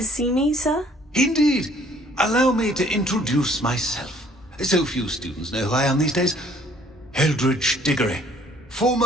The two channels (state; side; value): normal; both; correlation 0.59